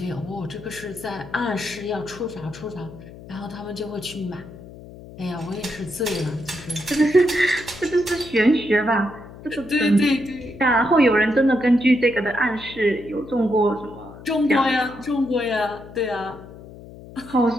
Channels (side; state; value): left; noise; hum, 17 dB below the sound